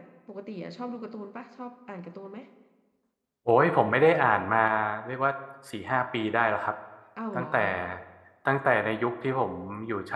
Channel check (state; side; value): identical; both; correlation 1.00